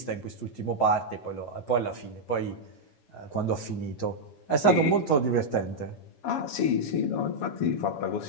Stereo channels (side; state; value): right; late; 7.1 ms